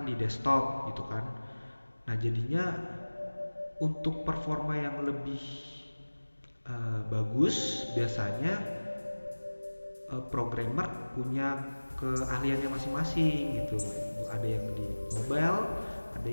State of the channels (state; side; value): inverted; both; correlation -1.00